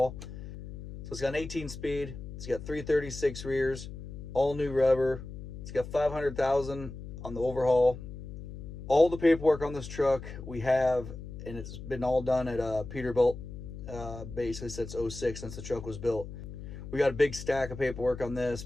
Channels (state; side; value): noise; left; hum, 11 dB below the sound